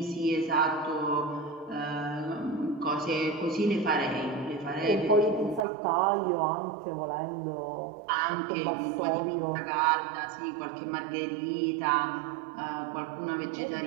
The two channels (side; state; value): left; drops out; at 5.6 s